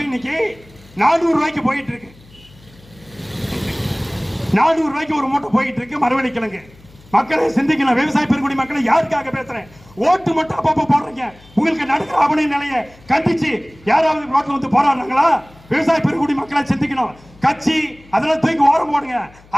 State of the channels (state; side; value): noise; left; hum, 25 dB below the sound